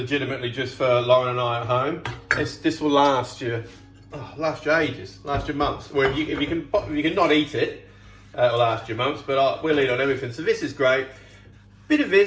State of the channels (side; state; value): both; identical; correlation 1.00